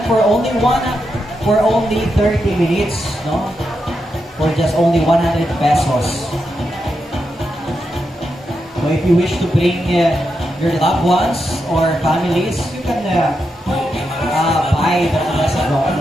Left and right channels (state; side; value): normal; both; correlation 0.85